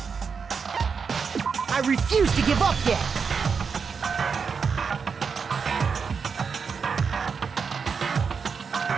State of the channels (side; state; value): left; quieter; 5.8 dB